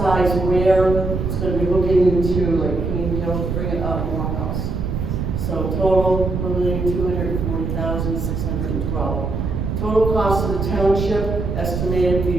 where it's going to be looking into like King Hill to bring it up Morehouse. So total $1,240,612. Total cost of the township estimated to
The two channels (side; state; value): right; noise; rumble, 2 dB below the sound